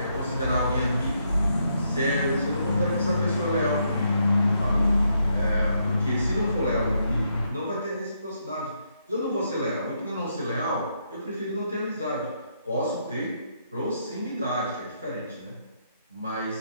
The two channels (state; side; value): inverted; both; correlation -0.77